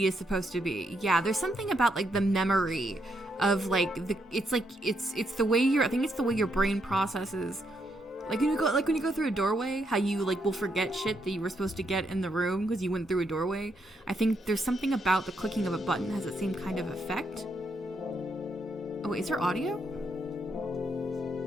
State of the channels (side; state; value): both; normal; correlation 0.78